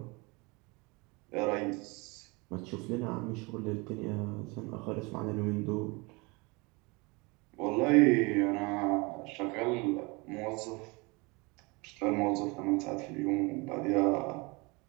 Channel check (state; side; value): quieter; left; 27.1 dB